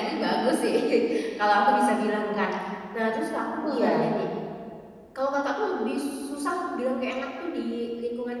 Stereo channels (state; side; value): identical; both; correlation 1.00